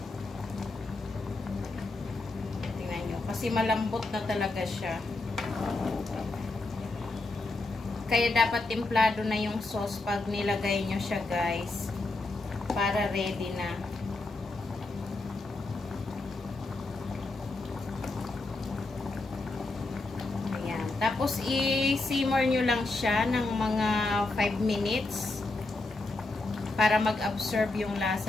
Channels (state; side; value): quieter; right; 3.1 dB